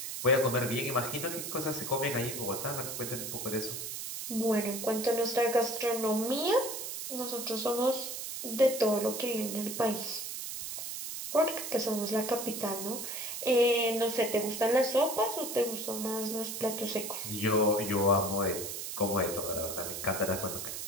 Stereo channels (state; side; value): noise; right; hiss, 6 dB below the sound